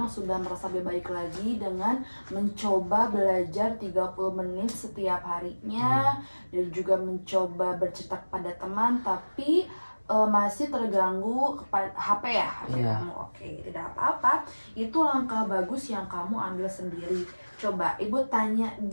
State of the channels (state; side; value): inverted; both; correlation -1.00